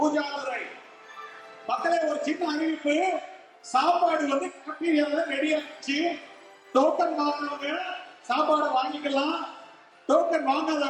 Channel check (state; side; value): identical; both; correlation 1.00